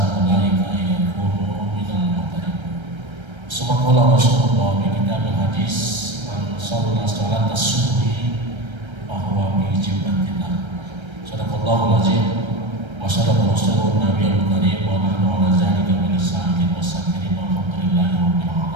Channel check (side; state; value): left; late; 1.3 ms